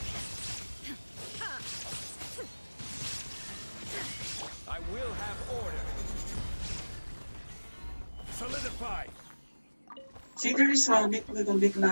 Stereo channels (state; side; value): inverted; both; correlation -1.00